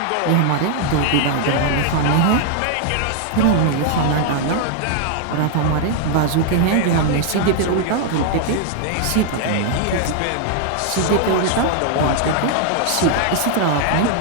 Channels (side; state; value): both; different; correlation 0.00